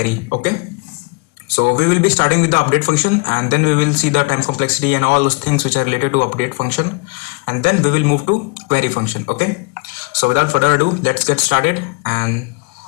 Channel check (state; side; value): quieter; right; 30.6 dB